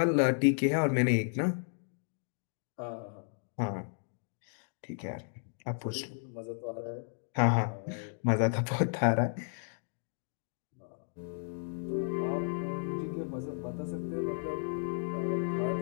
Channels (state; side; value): silent; right; digital silence